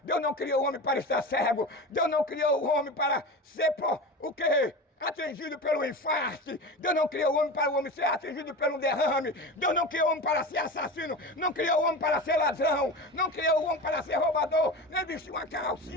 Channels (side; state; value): both; normal; correlation 0.28